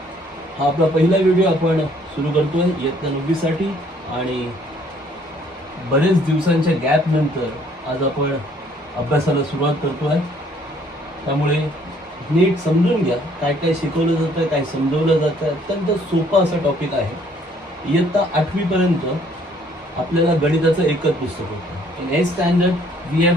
हा आपला पहिला व्हिडिओ आपण सुरू करतोय इयत्ता 9वी साठी आणि बरेच दिवसांच्या गॅप नंतर आज आपण अभ्यासाला सुरुवात करतोय. त्यामुळे नीट समजून घ्या काय काय शिकवलं जातं, काय समजवलं जातं. अत्यंत सोपा असा टॉपिक आहे. इयत्ता 8वी पर्यंत आपल्याला गणिताचं एकच पुस्तक होतं. In 8th standard we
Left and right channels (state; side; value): normal; both; correlation 0.62